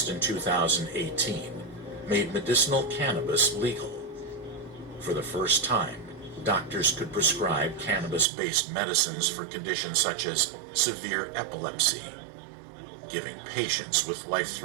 in 2018 made medicinal cannabis legal. For the first time, doctors could prescribe cannabis-based medicines for conditions such as severe epilepsy, giving patients with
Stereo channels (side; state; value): left; drops out; at 8.2 s